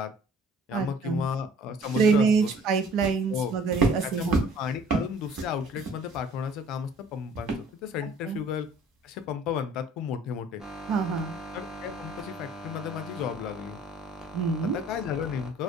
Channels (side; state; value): both; normal; correlation 0.53